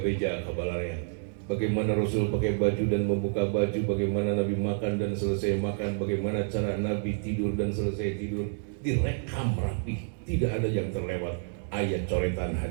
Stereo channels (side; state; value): left; silent; digital silence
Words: kabalarnya. Bagaimana Rasul pakai baju dan membuka baju, bagaimana Nabi makan dan selesai makan, bagaimana cara Nabi tidur dan selesai tidur, direkam rapi, tidak ada yang terlewat. Ayat coretan